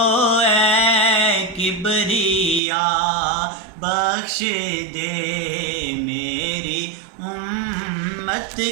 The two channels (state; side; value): drops out; left; at 2.6 s